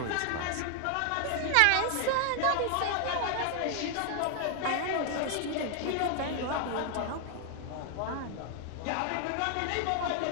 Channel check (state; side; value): different; both; correlation 0.00